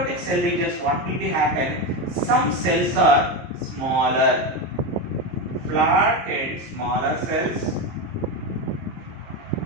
cell divisions, what will be happen? Some cells are smaller, flat and smaller cells.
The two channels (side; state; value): left; late; 23 ms